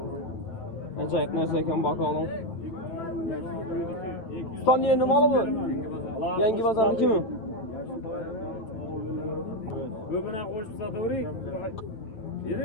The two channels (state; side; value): late; right; 9.0 ms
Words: Acayip narsa ekan bakalım. Ustan yerine malı mı? Yangi pazarniki mi? Göbüne koşup satavırayım.